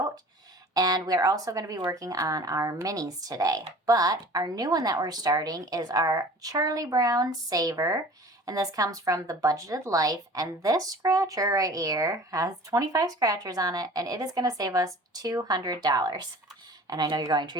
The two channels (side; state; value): both; normal; correlation 0.43